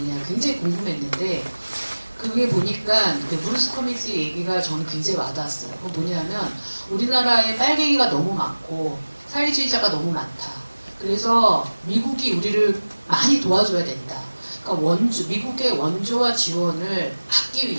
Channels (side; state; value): both; inverted; correlation -1.00